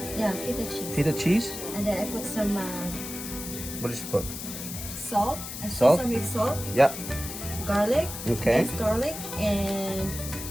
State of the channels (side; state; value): left; noise; hiss, 8 dB below the sound